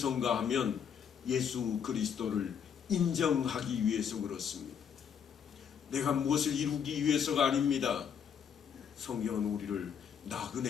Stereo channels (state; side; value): quieter; right; 7.7 dB